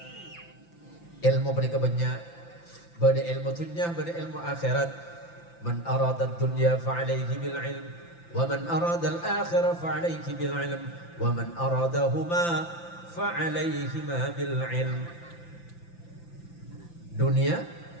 Ilmu panikah banyak, bade ilmu dunia, bade ilmu akhirat. Man arada dunya fa'alaihi bil ilm, wa man arada al akhirah fa'alaihi bil ilm, wa man aradahuma fa'alaihima bil ilm. Dunia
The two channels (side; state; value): right; late; 5.9 ms